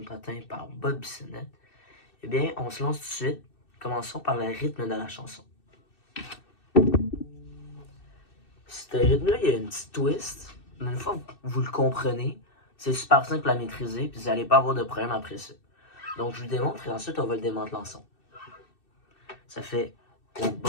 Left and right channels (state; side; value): late; right; 2.6 ms